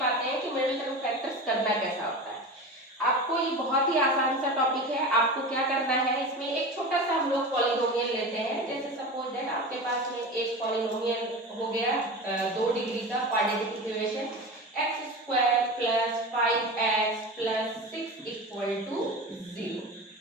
हैं कि मिडिल टर्म फैक्टर्स करना कैसा होता है। आपको ये बहुत ही आसान सा टॉपिक है। आपको क्या करना है, इसमें एक छोटा सा हम लोग पॉलिनोमियल लेते हैं। जैसे सपोज दैट आपके पास में एक पॉलिनोमियल हो गया 2 डिग्री का quadratic equation x square plus 5x plus 6 equal to 0।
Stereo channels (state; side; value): normal; both; correlation 0.29